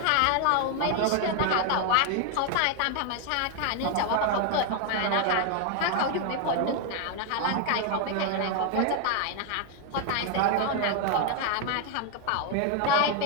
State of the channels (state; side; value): different; both; correlation 0.01